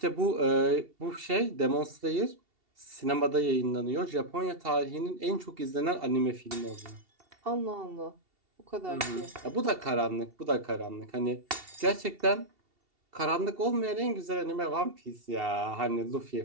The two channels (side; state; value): left; late; 2.7 ms